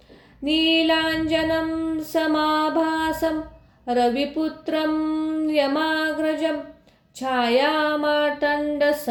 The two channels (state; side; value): identical; both; correlation 1.00